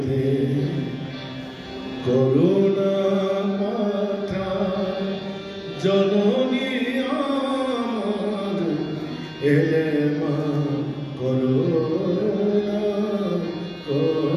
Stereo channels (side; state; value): both; identical; correlation 1.00